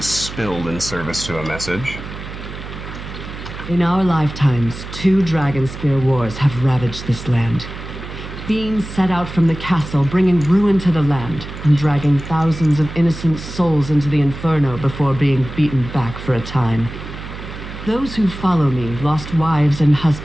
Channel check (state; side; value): noise; right; hum, 11 dB below the sound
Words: spilled in service to a message. In our lifetimes, 2 Dragonspear wars have ravaged this land. Fiends set out from the castle, bringing ruin to the land, and dragging thousands of innocent souls into the inferno before being beaten back for a time. Those who follow me lost wives and